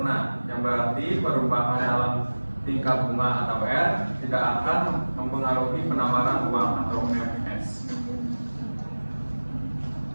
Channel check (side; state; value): both; inverted; correlation -1.00